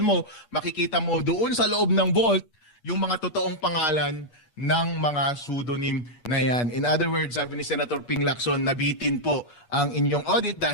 mo, makikita mo doon sa loob ng vault yung mga totoong pangalan ng mga pseudonym na yan. In other words, sabi ni Senator Ping Lacson, nabitin po ang inyong audit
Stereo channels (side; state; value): right; late; 8.4 ms